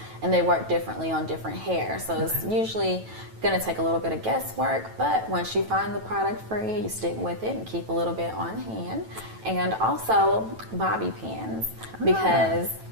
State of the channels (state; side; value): late; left; 9.1 ms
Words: and they work differently on different hair. So it's usually going to take a little bit of guesswork, but once you find the product for you, you stick with it and keep a little bit on hand. And also bobby pins, because